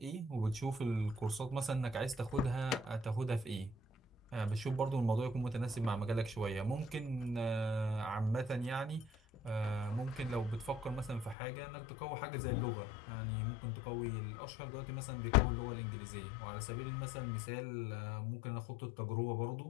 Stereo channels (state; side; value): drops out; right; at 11.4 s